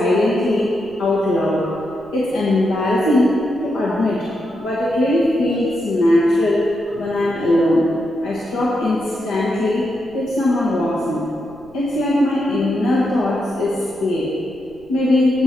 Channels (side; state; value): left; noise; rumble, 28 dB below the sound